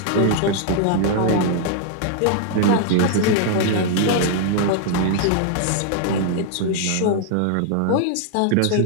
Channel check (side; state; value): both; different; correlation 0.00